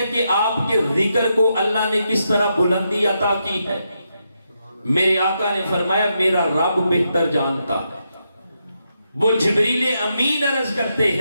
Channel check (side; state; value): both; inverted; correlation -0.82